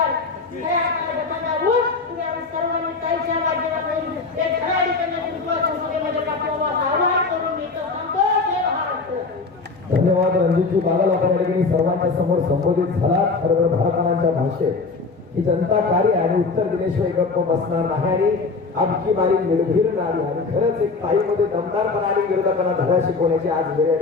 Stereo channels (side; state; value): right; quieter; 4.2 dB